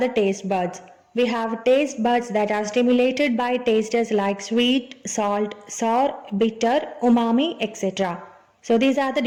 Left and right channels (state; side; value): identical; both; correlation 1.00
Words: taste buds. We have taste buds that are stimulated by tastes like sweet, salt, sour, bitter, umami, etc. So these are the